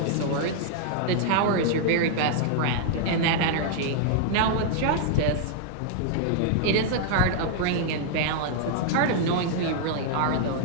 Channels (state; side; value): different; both; correlation -0.01